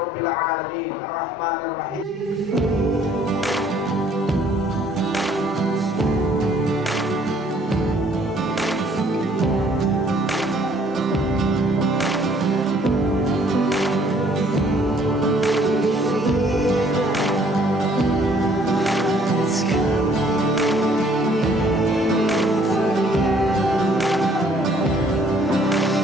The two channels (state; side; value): normal; both; correlation 0.61